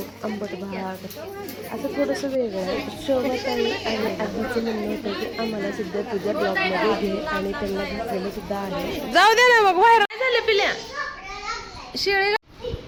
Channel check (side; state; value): both; identical; correlation 1.00